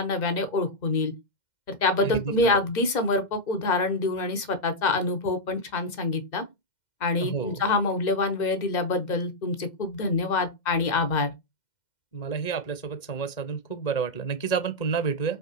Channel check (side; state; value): right; late; 2.1 ms